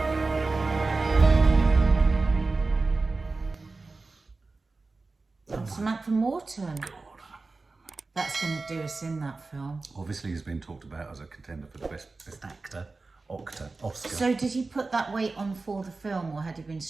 Samantha Morton. That's going to do us in, that film. Obviously, he's been talked about as a contender for the best actor, Oscar. So did he put that weight on for the film, or had he been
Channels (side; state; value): left; quieter; 3.7 dB